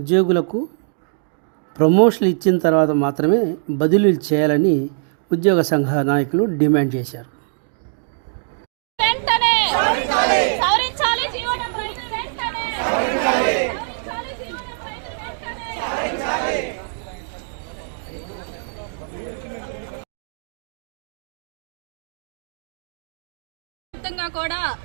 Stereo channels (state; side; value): silent; left; digital silence